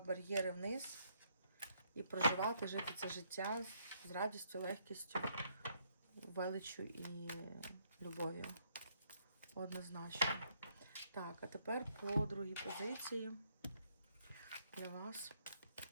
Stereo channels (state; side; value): inverted; both; correlation -0.71